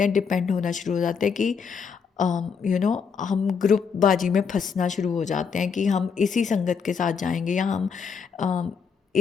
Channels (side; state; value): right; quieter; 6.1 dB